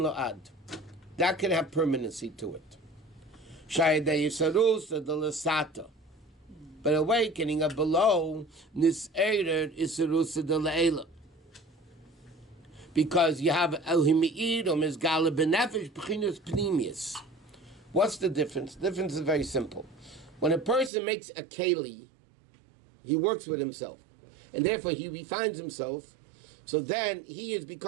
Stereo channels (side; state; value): left; drops out; at 20.9 s